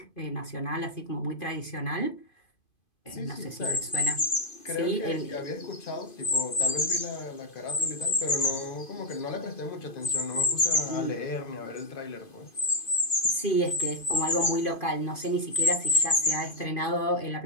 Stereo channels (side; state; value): right; late; 2.5 ms